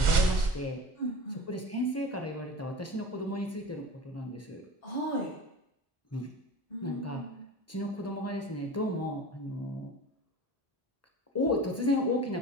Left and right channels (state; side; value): normal; both; correlation 0.36